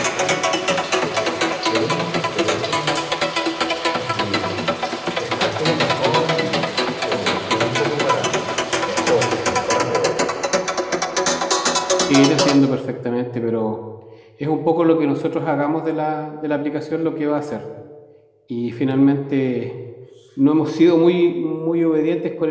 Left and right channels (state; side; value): identical; both; correlation 1.00